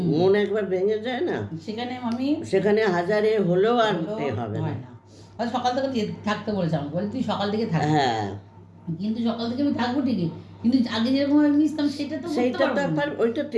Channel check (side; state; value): both; identical; correlation 1.00